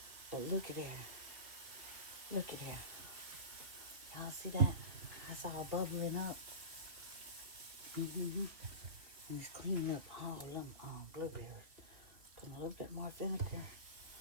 But look at there. Look at there. Y'all see that? That's all bubbling up. And it's cleaning up all of them blueberries. Put a little bit more vinegar.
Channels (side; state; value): left; late; 3.0 ms